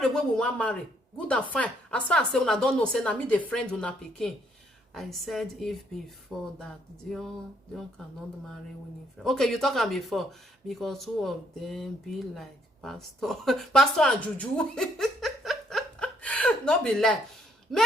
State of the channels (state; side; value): normal; both; correlation 0.69